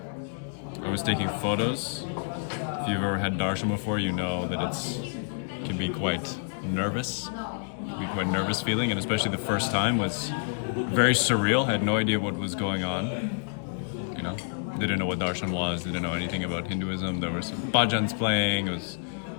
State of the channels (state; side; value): silent; right; digital silence